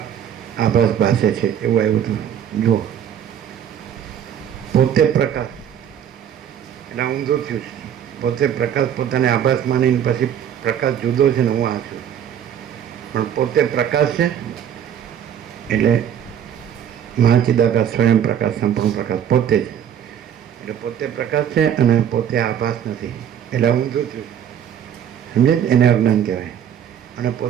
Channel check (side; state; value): left; quieter; 9.3 dB